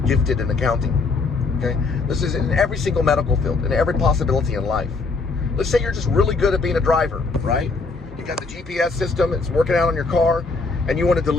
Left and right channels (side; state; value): right; quieter; 4.1 dB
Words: in accounting. Okay? This is in every single medical field, in every possibility in life. Let's say you're just really good at being a driver, right? You got the GPS system, it's working out on your car, and you want to